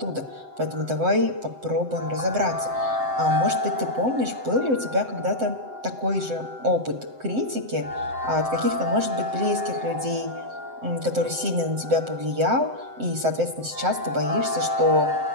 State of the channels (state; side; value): late; left; 7.8 ms